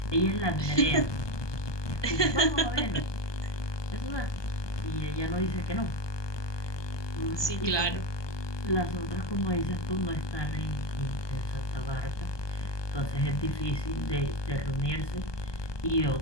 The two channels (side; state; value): right; late; 1.2 ms